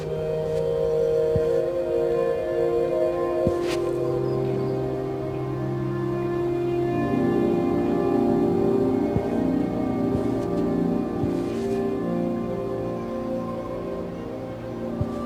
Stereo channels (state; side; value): identical; both; correlation 1.00